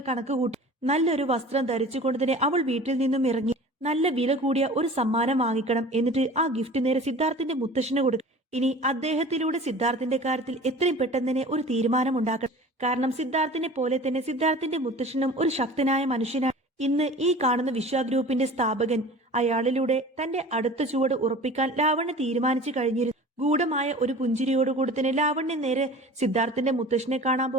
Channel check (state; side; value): normal; both; correlation 0.41